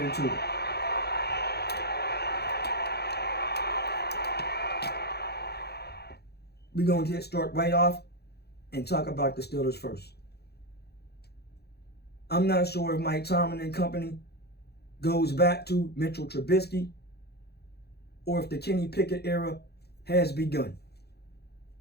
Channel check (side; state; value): right; late; 0.47 ms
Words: into it. We're going to start right off and talk about the Steelers first. I'm not sure if Mike Tomlin and company goes back to Mitchell Trubisky or if the Kenny Pickett era has begun.